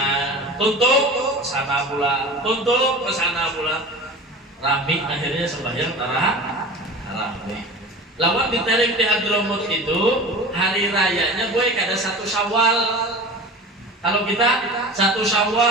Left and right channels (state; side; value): normal; both; correlation 0.35